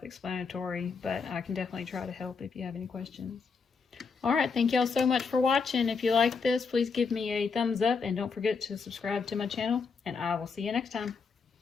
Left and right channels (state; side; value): quieter; right; 5.1 dB